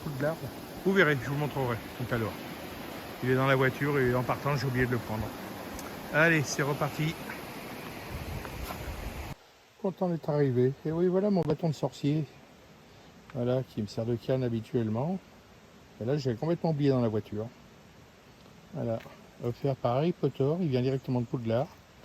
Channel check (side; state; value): both; identical; correlation 1.00